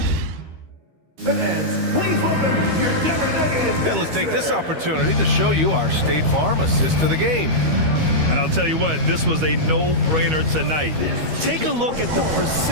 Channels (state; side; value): late; left; 13 ms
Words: And let's take this opportunity to show you our State Farm assist to the game. And I'll tell you what, this was a no-brainer tonight. Take a look at the